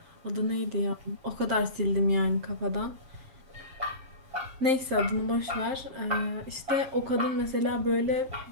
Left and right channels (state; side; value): late; left; 7.6 ms